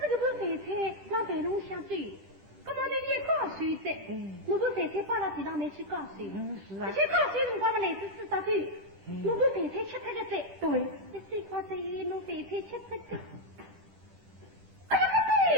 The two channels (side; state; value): left; late; 10 ms